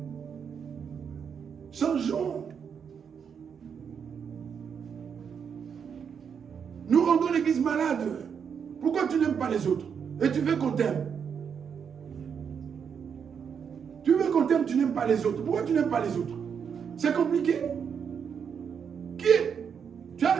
Changeons. Nous rendons l'église malade. Pourquoi tu n'aimes pas les autres? Et tu veux qu'on t'aime? Tu veux qu'on t'aime, tu n'aimes pas les autres. Pourquoi tu n'aimes pas les autres? C'est compliqué. Tu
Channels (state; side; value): quieter; left; 7.1 dB